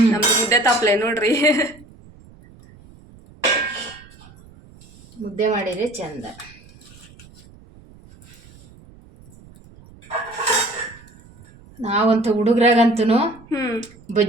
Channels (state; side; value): noise; right; rumble, 24 dB below the sound